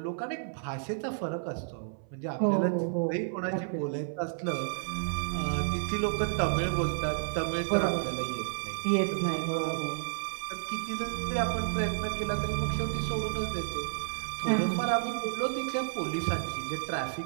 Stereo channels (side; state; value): left; silent; 57 dB below the other